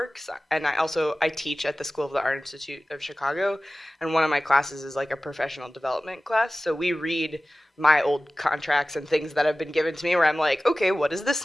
and I teach at the School of the Art Institute of Chicago, and one of my classes is like a professional development class. So we read my old contracts and things that have been given to me where I'm like, okay, what does this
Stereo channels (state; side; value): normal; both; correlation 0.97